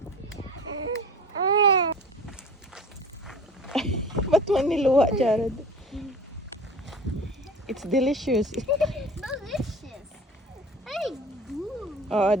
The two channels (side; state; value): both; normal; correlation 0.40